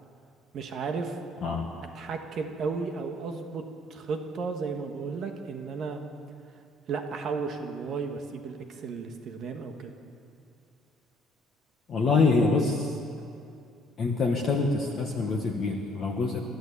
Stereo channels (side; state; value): both; normal; correlation 0.62